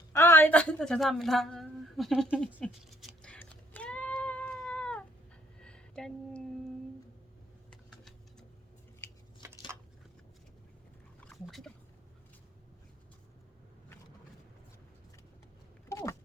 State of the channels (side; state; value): both; normal; correlation 0.64